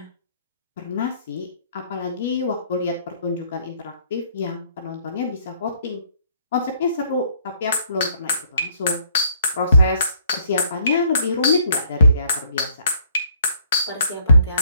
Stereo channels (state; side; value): inverted; both; correlation -0.63